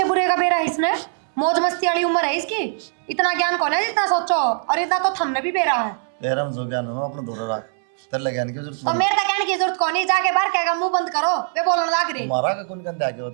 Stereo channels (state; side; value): silent; left; 65 dB below the other